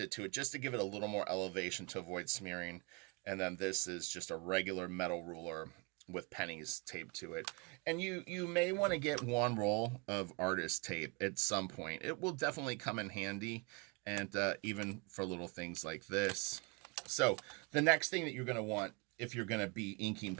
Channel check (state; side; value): quieter; left; 29.2 dB